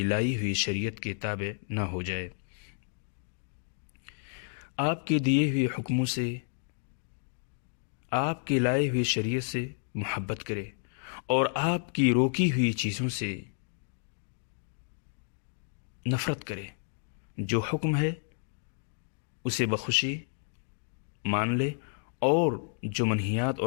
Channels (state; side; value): silent; right; digital silence